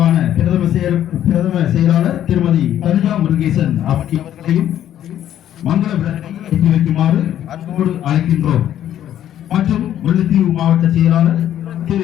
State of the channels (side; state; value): right; quieter; 11.2 dB